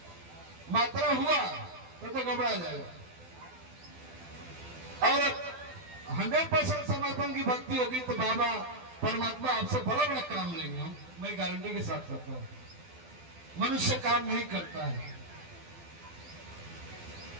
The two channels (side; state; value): left; late; 12 ms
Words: मात्रा हुआ तो घबरा जाएगा। और 100% समर्पण की भक्ति होगी तो बाबा परमात्मा आपसे बड़ा बड़ा काम लेंगे। हम, मैं गारंटी के साथ कहता हूं। मनुष्य काम नहीं करता है,